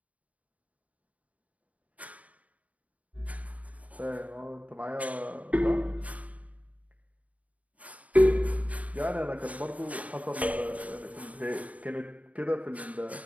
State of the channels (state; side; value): late; left; 0.069 ms